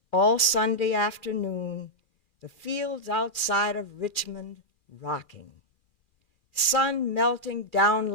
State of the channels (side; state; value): right; late; 2.4 ms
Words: all Sunday afternoon, the fields outside of Richmond rocking. Sun melting down